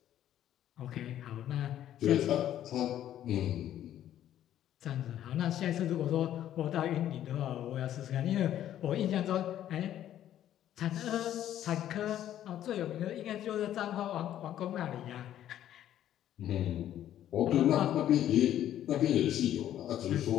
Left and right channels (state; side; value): quieter; right; 11.6 dB